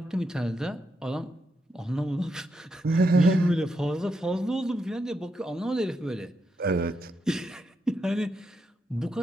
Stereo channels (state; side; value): normal; both; correlation 0.83